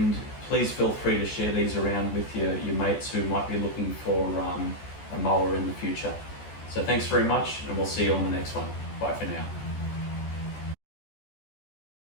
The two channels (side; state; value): right; late; 14 ms